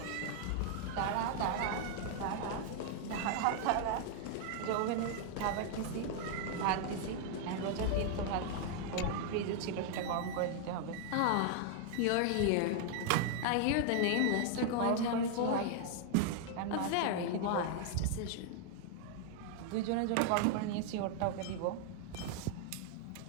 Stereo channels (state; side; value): different; both; correlation 0.00